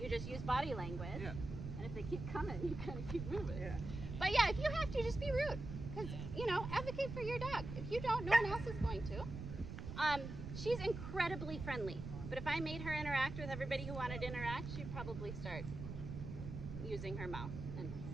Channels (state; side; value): noise; right; rumble, 7 dB below the sound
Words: You just use body language. Yeah. And if they keep coming, you kind of keep moving. Yeah. But yeah, if you have to, just be rude. Because, advocate for your dog. If you don't, no one else is going to. She's incredibly friendly. But if I made her interact with everybody who wanted to interact, she'd probably start using her mouth and